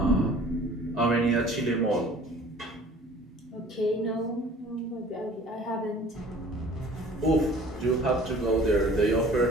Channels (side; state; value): both; normal; correlation 0.49